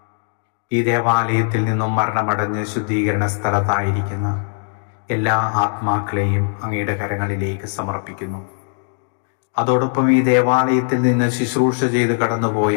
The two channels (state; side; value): silent; right; digital silence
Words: ഈ ദേവാലയത്തിൽ നിന്നും മരണമടഞ്ഞ് ശുദ്ധീകരണ സ്ഥലത്തായിരിക്കുന്ന എല്ലാ ആത്മാക്കളെയും അങ്ങയുടെ കരങ്ങളിലേക്ക് സമർപ്പിക്കുന്നു. അതോടൊപ്പം ഈ ദേവാലയത്തിൽ നിന്ന് ശുശ്രൂഷ ചെയ്ത്